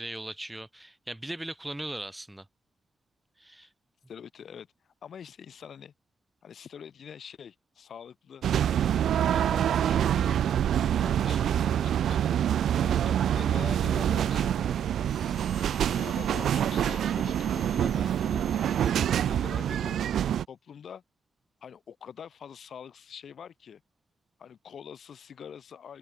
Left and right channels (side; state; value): left; quieter; 8.8 dB